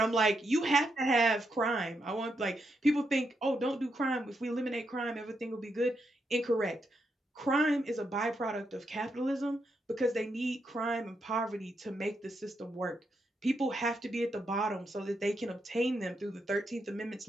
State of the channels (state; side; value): normal; both; correlation 0.81